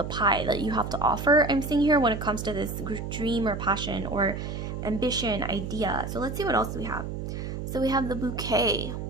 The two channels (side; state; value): right; noise; hum, 6 dB below the sound